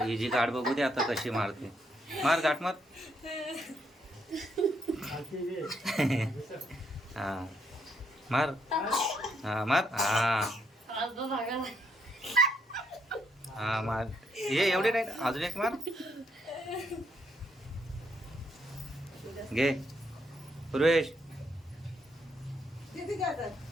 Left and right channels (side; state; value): both; normal; correlation 0.75